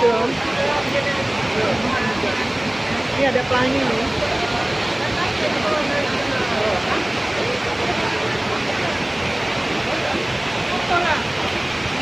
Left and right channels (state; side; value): noise; right; hum, 28 dB below the sound